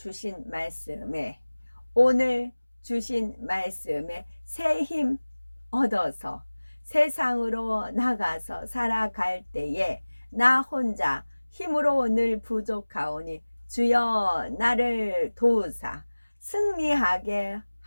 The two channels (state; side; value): inverted; both; correlation -1.00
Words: 말씀에 새 힘 얻어서 세상으로 나가서 살아갈 때에 나 혼자 힘으로 늘 부족하오니 주여 나를 도우사 승리하게